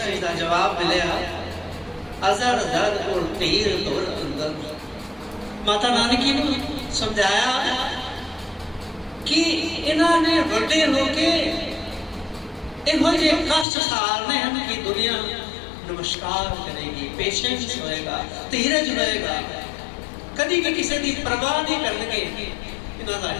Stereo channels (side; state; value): right; drops out; at 13.7 s